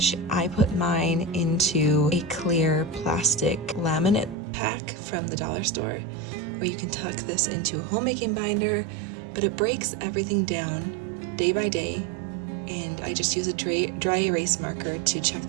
I put mine into a clear plastic laminate pack from the dollar store, or you can tuck this into a homemaking binder, but it breaks everything down day by day, and I just use a dry erase marker to check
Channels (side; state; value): left; drops out; at 4.4 s